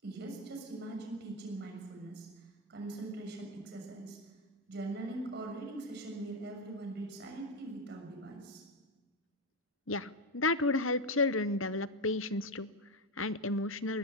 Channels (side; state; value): both; normal; correlation 0.10